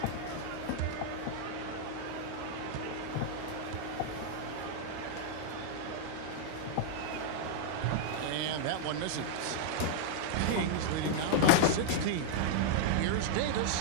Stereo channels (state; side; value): different; both; correlation -0.01